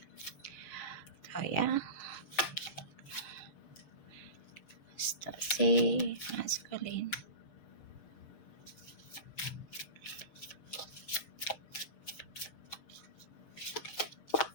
Oh ya, si maskulin.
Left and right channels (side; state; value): right; late; 6.5 ms